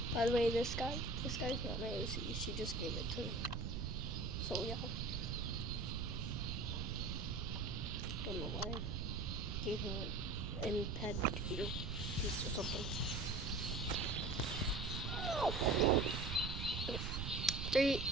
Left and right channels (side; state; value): right; noise; rumble, 2 dB below the sound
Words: By the way, this guy's not my OC. She just gave it to me. So yeah. Don't know why. Gave him an imped piece or something. Okay. 3,